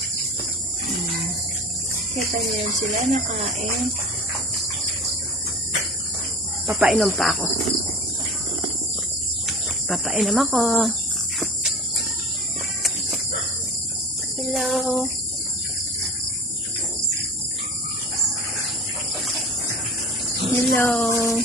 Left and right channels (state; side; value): normal; both; correlation 0.37